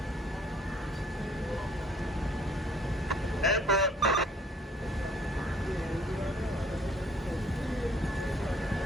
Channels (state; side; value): normal; both; correlation 0.58